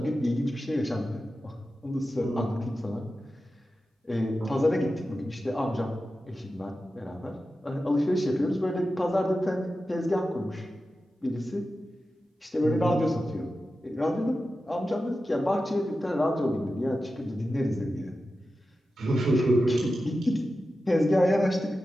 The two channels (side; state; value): both; normal; correlation 0.92